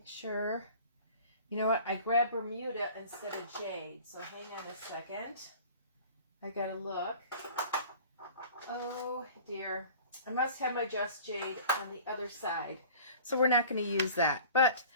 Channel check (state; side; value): inverted; both; correlation -0.44